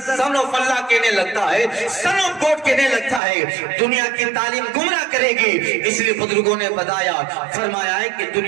سن آف اللہ کہنے لگتا ہے, سن آف گاڈ کہنے لگتا ہے. دنیا کی تعلیم گمراہ کرے جائے گی. اس لیے بزرگوں نے بتایا فرمایا ہے کہ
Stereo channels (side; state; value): left; drops out; at 3.2 s